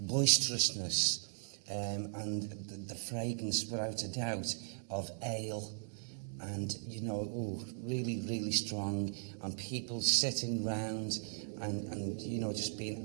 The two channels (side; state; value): left; silent; digital silence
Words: boisterousness, and the fragrance, without a doubt, of ale, and really, really strong, and people sitting round and just